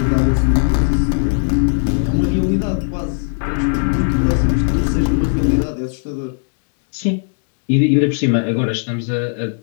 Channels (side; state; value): right; silent; digital silence